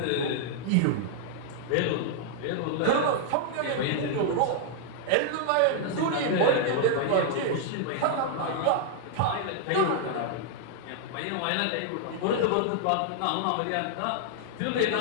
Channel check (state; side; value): different; both; correlation -0.01